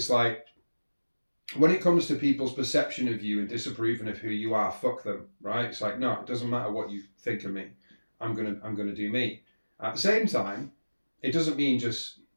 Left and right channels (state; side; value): inverted; both; correlation -1.00